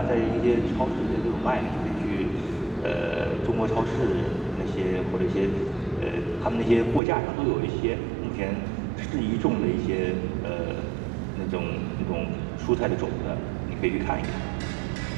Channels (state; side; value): drops out; left; at 7.0 s